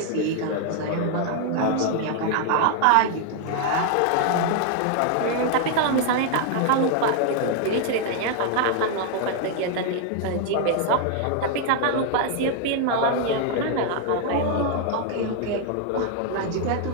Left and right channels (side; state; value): both; different; correlation 0.00